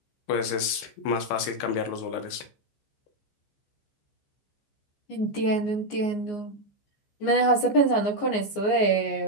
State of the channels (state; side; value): late; right; 14 ms